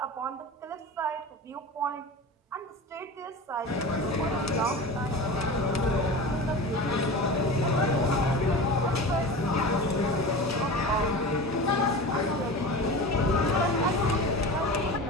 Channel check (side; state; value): both; normal; correlation 0.31